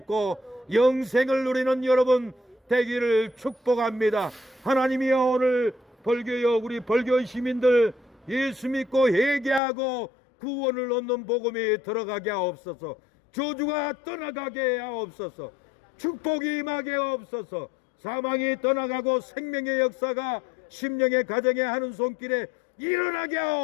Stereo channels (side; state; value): right; drops out; at 9.6 s